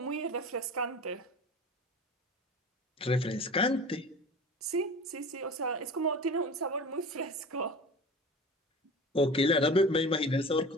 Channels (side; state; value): both; normal; correlation 0.36